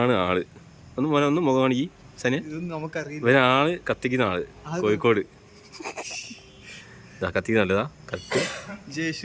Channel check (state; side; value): identical; both; correlation 1.00